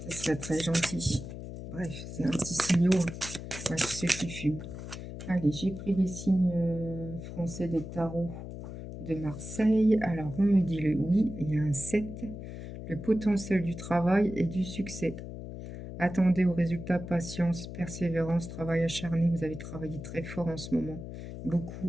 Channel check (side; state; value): left; noise; hum, 10 dB below the sound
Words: ce serait très gentil. Bref, c'est un petit signal à tous ceux qui fument. Allez, j'ai pris les signes français des tarots de Marseille. Alors, on me dit le oui, il y a un 7. Le potentiel du travail et du succès. Attendez aux résultats, patience, persévérance, travail acharné. Vous avez travaillé très fort en ce moment.